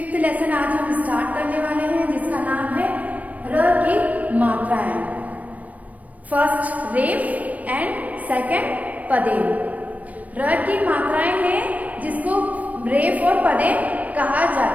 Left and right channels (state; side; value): late; left; 0.070 ms